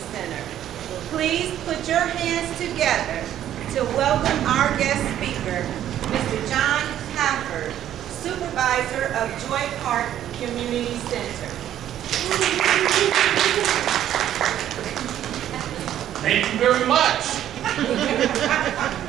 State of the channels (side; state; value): left; quieter; 11.4 dB